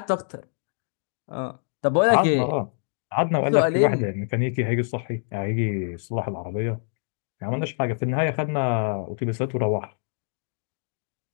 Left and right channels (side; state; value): right; silent; digital silence